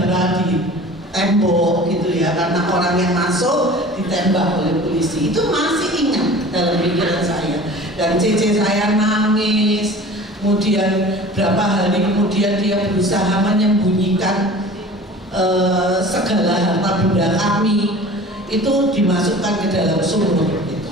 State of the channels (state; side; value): normal; both; correlation 0.42